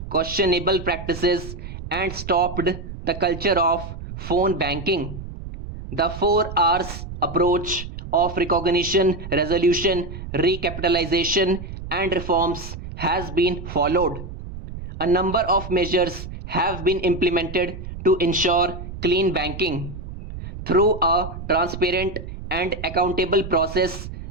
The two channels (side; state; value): right; noise; rumble, 10 dB below the sound